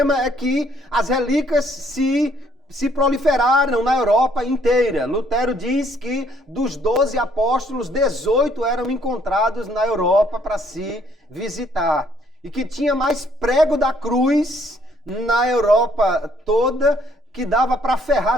é que as relíquias se proliferaram na Europa inteira. Lutero diz que dos 12 apóstolos, 18 eram encontrados na Europa para se visitar. E que tinha mais prego da cruz na Europa toda, que dava para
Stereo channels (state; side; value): normal; both; correlation 0.65